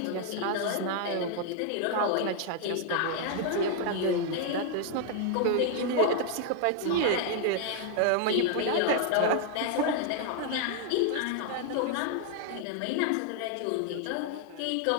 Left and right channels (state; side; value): different; both; correlation 0.00